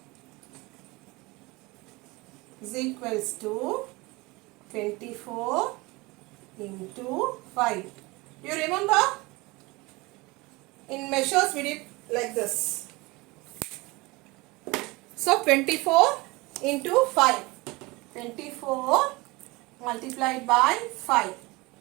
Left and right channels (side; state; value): left; quieter; 23.5 dB